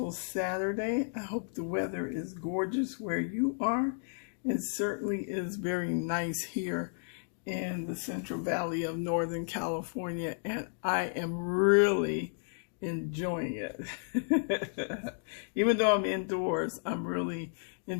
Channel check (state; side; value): silent; right; digital silence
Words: Saturday? I hope the weather is gorgeous where you are. It certainly is very nice here in the Central Valley of Northern California, and I am really enjoying it. Even though I'm indoors, I'm really